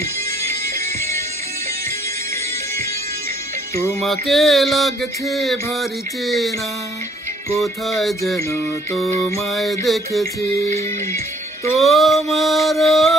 তোমাকে লাগছে ভারী চেনা, কোথায় যেন তোমায় দেখেছি। তোমার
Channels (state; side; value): normal; both; correlation 0.63